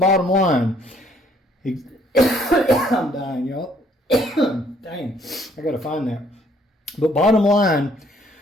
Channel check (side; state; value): both; normal; correlation 0.64